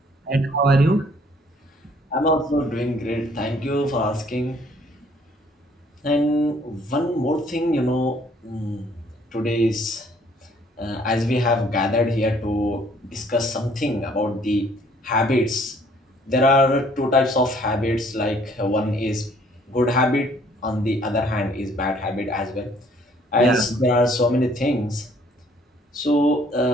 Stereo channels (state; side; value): normal; both; correlation 0.61